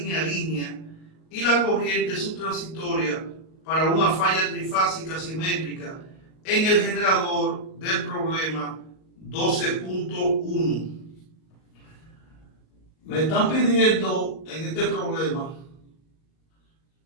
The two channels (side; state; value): right; late; 38 ms